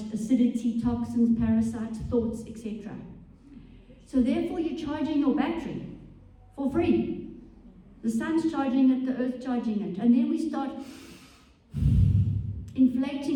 acidity, toxins, parasites, thoughts, etc. So therefore, you're charging your battery for free. The sun's charging it, the earth's charging it. And then we start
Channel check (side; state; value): both; identical; correlation 1.00